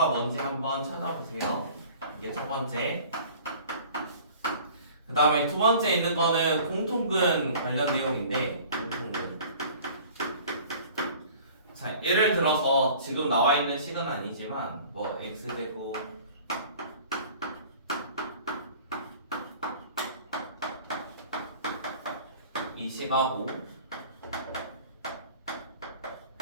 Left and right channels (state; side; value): inverted; both; correlation -0.46